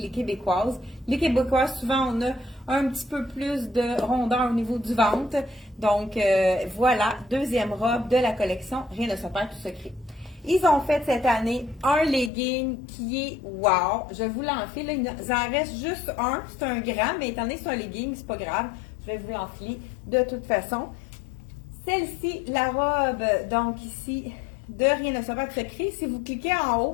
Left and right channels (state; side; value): drops out; right; at 12.3 s